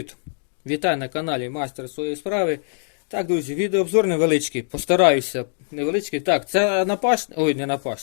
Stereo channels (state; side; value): silent; right; digital silence